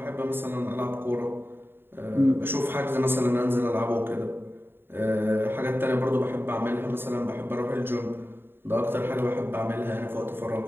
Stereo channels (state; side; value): late; left; 0.11 ms